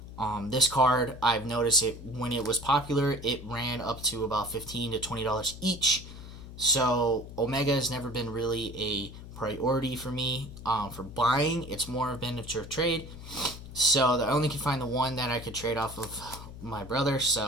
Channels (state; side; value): noise; left; hum, 13 dB below the sound